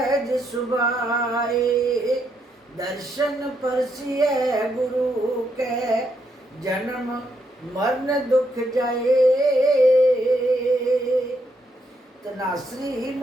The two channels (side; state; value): both; normal; correlation 0.77